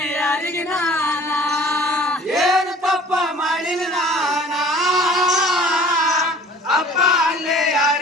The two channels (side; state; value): both; normal; correlation 0.48